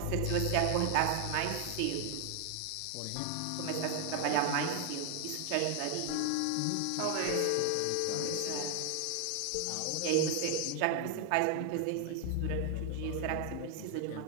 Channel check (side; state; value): both; different; correlation 0.00